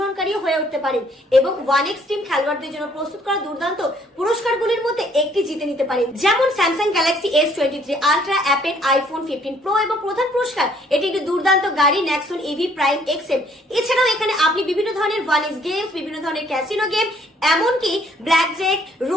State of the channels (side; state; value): both; normal; correlation 0.63